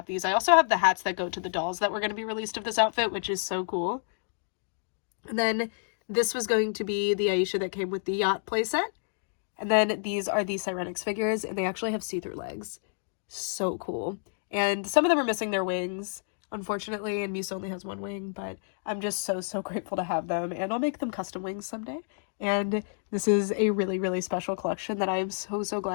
these. I also have the hats that go to the dolls that were going to be released of this outfit, which is so cool. And then this was going to be the Aisha that came with the yacht playset. And then these are the Sirenix figures, and they actually have see-through legs. So cool. And some of them are missing their wings, unfortunately, and Musa only has one wing, but I'm just so, so grateful to have them, and I'll make them custom wings someday. And this is a really, really special collection that I am so, so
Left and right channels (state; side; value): silent; right; digital silence